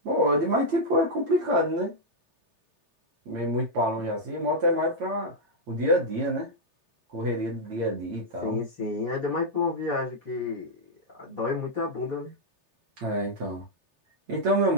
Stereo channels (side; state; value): left; late; 3.3 ms